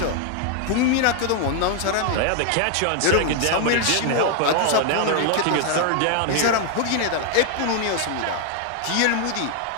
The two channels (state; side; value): different; both; correlation 0.00